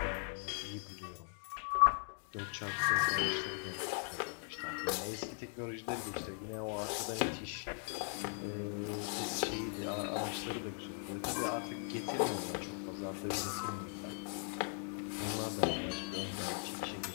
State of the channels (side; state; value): right; silent; 52 dB below the other